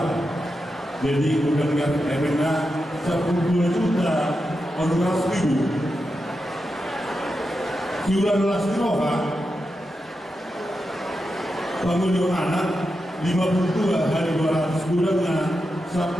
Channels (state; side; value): normal; both; correlation 0.88